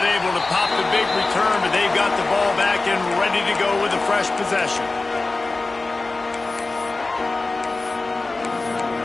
able to pop the big return, but they've got the ball back and ready to go with a fresh possession.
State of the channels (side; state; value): right; quieter; 3.4 dB